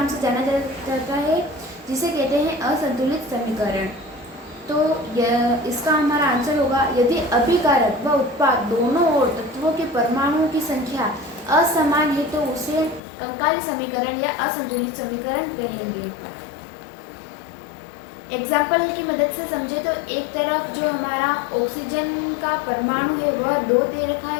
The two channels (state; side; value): drops out; right; at 13.0 s